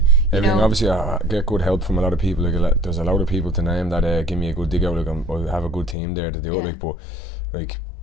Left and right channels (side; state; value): right; drops out; at 6.0 s